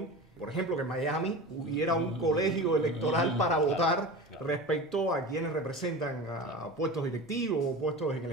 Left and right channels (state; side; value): normal; both; correlation 0.32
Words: por ejemplo, que en Miami hubiera un colegio electoral para votar respecto a quienes representan a puestos directivos o puestos en el